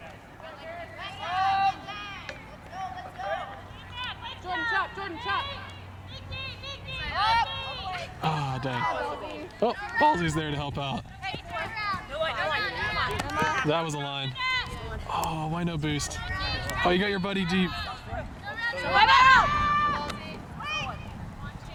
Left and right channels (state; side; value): identical; both; correlation 1.00